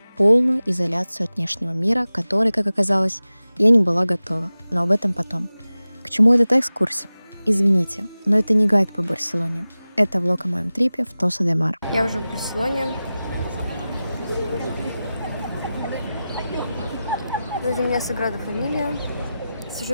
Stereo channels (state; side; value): inverted; both; correlation -0.95